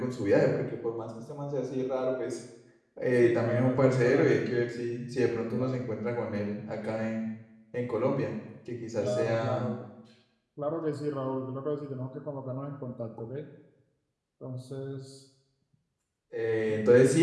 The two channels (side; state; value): both; identical; correlation 1.00